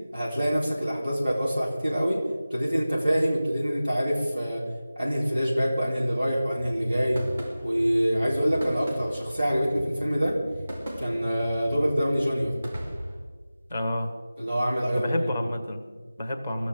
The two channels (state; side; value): inverted; both; correlation -0.96